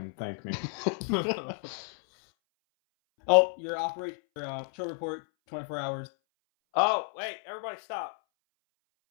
thank me. Oh, your patrol report, 24 hours. Oh, wait, everybody stop.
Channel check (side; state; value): right; silent; 57 dB below the other